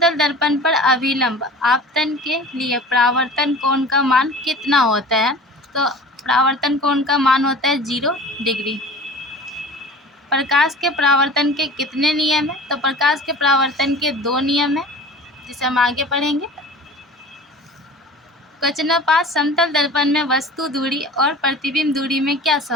दर्पण पर अभिलंब आपतन के लिए परावर्तन कोण का मान कितना होता है। तो परावर्तन कोण का मान होता है 0 डिग्री। प्रकाश के परावर्तन के कितने नियम हैं। तो प्रकाश के परावर्तन के 2 नियम हैं, जिसे हम आगे पढ़ेंगे। क्वेश्चन नंबर 5, समतल दर्पण में वस्तु दूरी और प्रतिबिंब दूरी में क्या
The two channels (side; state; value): both; normal; correlation 0.40